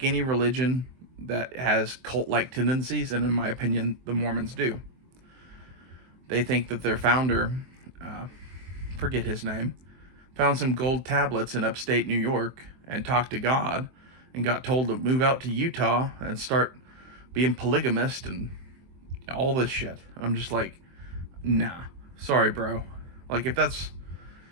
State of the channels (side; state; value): left; late; 23 ms